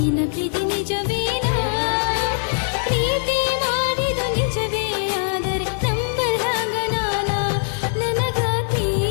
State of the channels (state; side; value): silent; right; digital silence